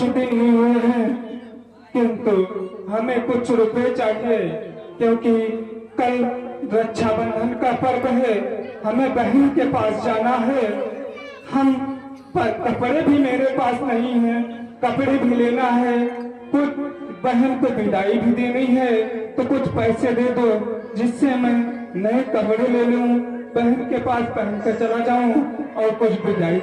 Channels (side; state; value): both; identical; correlation 1.00